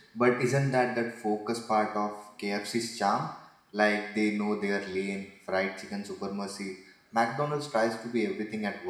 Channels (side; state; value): both; identical; correlation 1.00